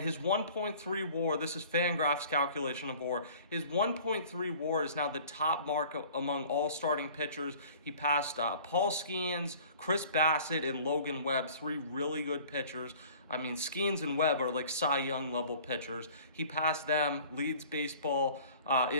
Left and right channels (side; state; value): both; inverted; correlation -0.48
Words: 1.3 WAR, this is Fangraph's calculation of WAR, his 1.3 WAR is now the top mark among all starting pitchers. He passed Paul Skeens, Chris Bassett, and Logan Webb, 3 really good pitchers. I mean, Skeens and Webb are like Cy Young level pitchers. He passed them, leads baseball